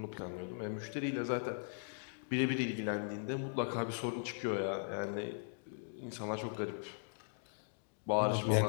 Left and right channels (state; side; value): silent; right; digital silence